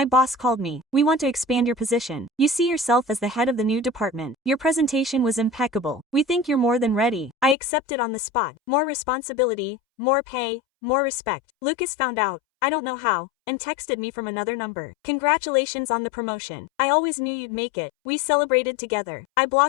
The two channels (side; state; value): right; drops out; at 7.6 s